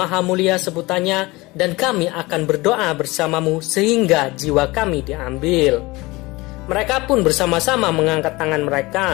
mulia sebutannya, dan kami akan berdoa bersamamu sehingga jiwa kami diambil." Mereka pun bersama-sama mengangkat tangan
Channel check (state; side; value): quieter; right; 21.9 dB